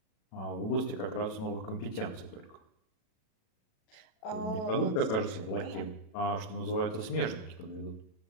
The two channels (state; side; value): late; right; 37 ms